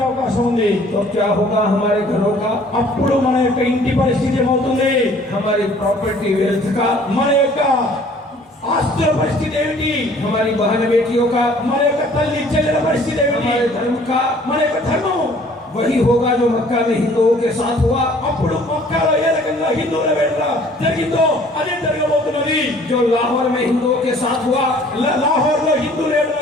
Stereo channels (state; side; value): normal; both; correlation 0.55